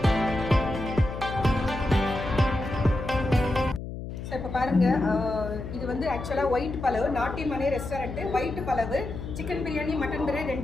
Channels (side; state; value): left; noise; hum, 8 dB below the sound